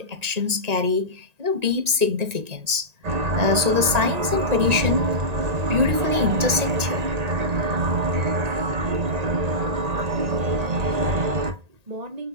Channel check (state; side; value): late; left; 1.8 ms